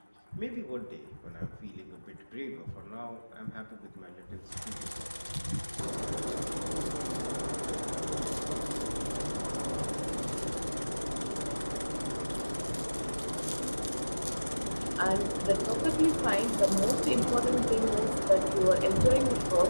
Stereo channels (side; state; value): both; inverted; correlation -1.00